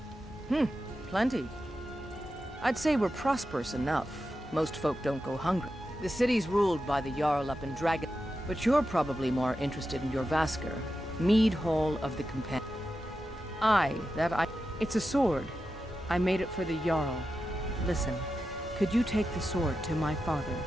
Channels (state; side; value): normal; both; correlation 0.90